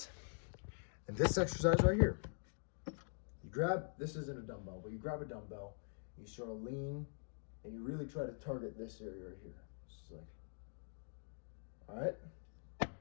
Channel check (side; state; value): right; silent; digital silence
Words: and this exercise right here, you grab, this isn't a dumbbell, but you grab a dumbbell, you sort of lean, and you really try to target this area right here. It's like, all right?